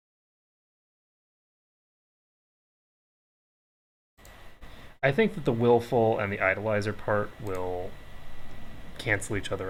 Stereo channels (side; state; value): both; identical; correlation 1.00